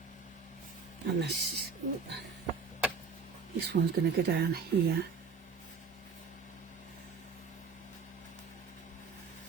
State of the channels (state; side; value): quieter; left; 5.1 dB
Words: And this one's going to go down here.